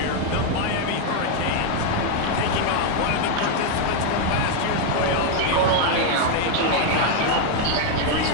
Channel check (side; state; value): both; different; correlation 0.01